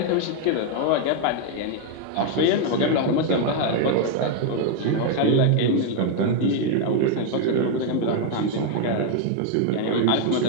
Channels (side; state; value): both; different; correlation 0.01